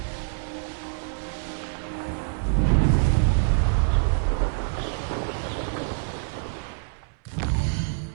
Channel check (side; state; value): left; silent; 61 dB below the other